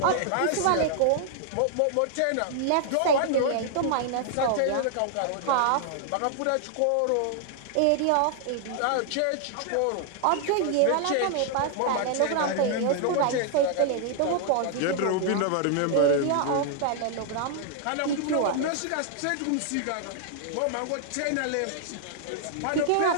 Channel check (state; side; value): different; both; correlation 0.00